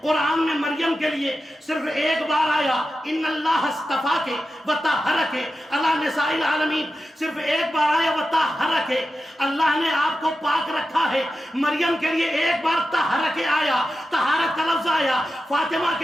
قرآن میں مریم کے لیے صرف ایک بار آیا ان اللہ اصطفاک وطہرک علی نساء العالمین, صرف ایک بار آیا وطہرک, اللہ نے آپ کو پاک رکھا ہے. مریم کے لیے ایک بار طہرک آیا, طہارت کا لفظ آیا. فاطمہ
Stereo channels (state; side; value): normal; both; correlation 0.91